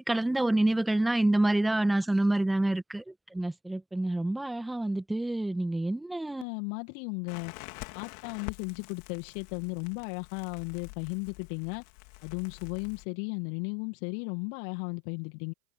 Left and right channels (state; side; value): drops out; right; at 6.5 s